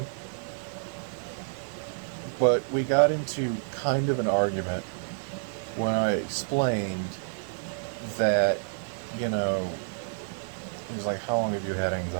But we got into kind of an argument when I explained that, you know, he was like, how long have you had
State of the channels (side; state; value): left; silent; digital silence